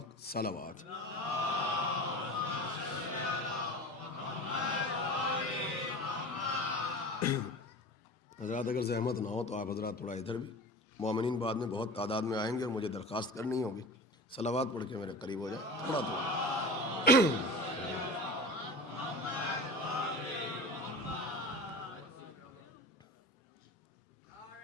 सलावत। हज़रात अगर ज़हमत ना हो तो आप हज़रात थोड़ा इधर भी, मोमिनीन बाद में बहुत तादाद में आएंगे और मुझे दरख्वास्त करनी होगी, सलावत पढ़ के मेरे करीब हो जाए थोड़ा थोड़ा।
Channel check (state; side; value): normal; both; correlation 0.34